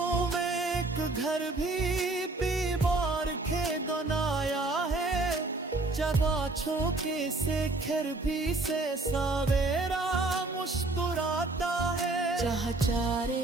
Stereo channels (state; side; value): quieter; left; 3.1 dB